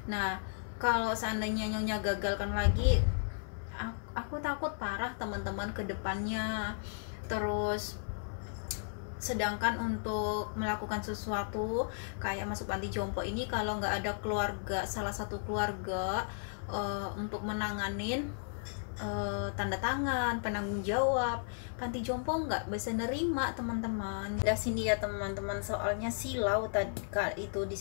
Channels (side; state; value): right; silent; 55 dB below the other